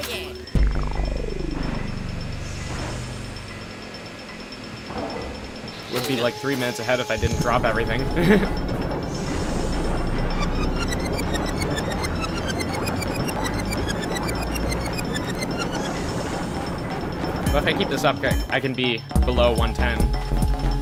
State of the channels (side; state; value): both; identical; correlation 1.00